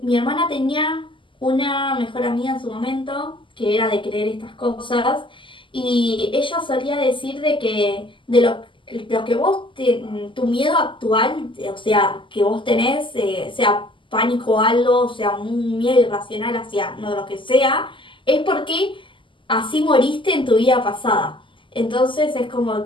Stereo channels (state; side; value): late; right; 0.25 ms